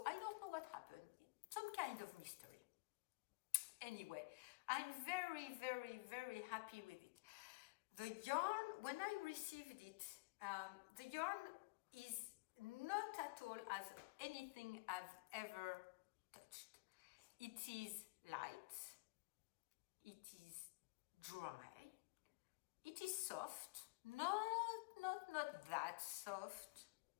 I don't know what happened. Some kind of mystery. Anyway, I'm very, very, very happy with it. The yarn, when I received it, the yarn is not at all as anything I've ever touched. It is light, it is dry, it is soft, not that soft,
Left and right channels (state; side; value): quieter; right; 27.5 dB